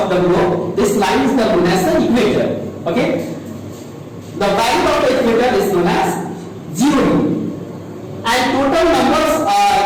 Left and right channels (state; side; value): identical; both; correlation 1.00